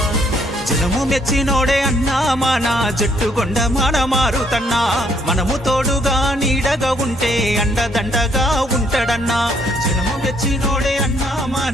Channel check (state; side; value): normal; both; correlation 0.68